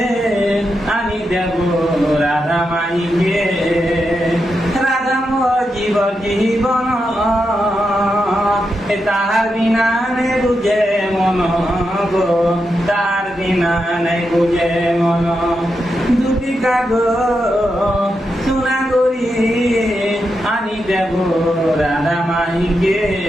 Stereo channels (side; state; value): both; normal; correlation 0.86